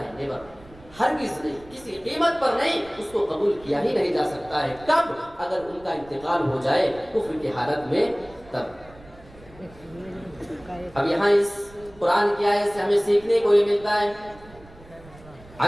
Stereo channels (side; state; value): right; noise; rumble, 22 dB below the sound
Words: نیور. ہرگز نہیں، کسی قیمت پر نہیں، اس کو قبول کیا ہی نہیں جا سکتا ہے. کب؟ اگر ان کا انتقال ہو جائے کفر کی حالت میں، تب. اب یہاں اس قرآن کی آیت سے ہمیں سیکھنے کو یہ ملتا ہے،